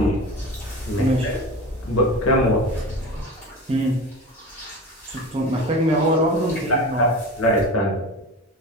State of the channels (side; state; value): both; normal; correlation 0.31